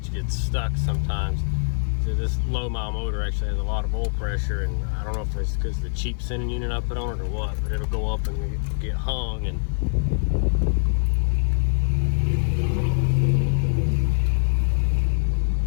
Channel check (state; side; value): silent; right; 58 dB below the other